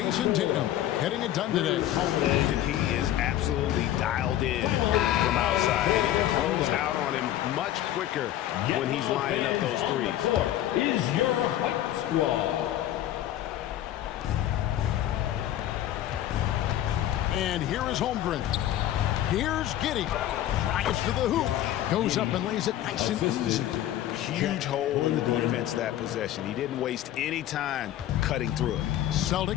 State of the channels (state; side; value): quieter; right; 12.6 dB